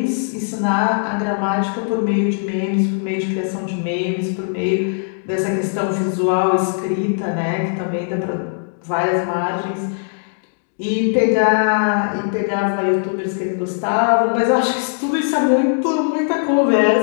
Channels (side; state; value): right; silent; digital silence